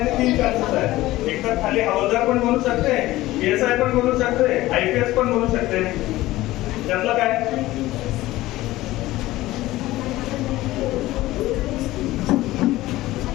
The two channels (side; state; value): right; quieter; 17.1 dB